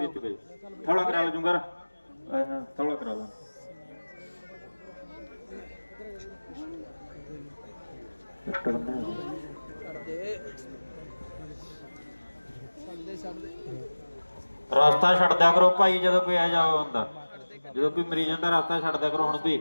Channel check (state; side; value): inverted; both; correlation -1.00